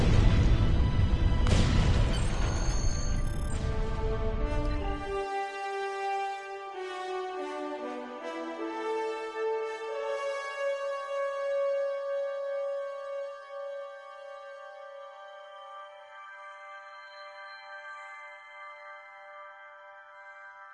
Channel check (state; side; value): identical; both; correlation 1.00